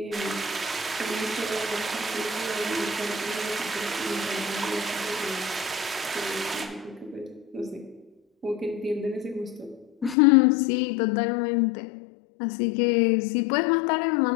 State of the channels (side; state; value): right; drops out; at 10.2 s